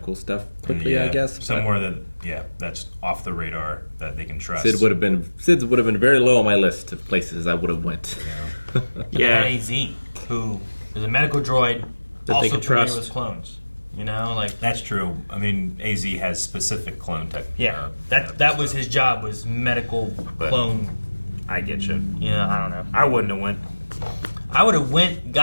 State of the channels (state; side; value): inverted; both; correlation -1.00